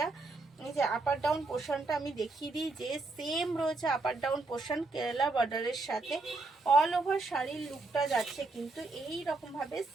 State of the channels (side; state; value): left; quieter; 3.3 dB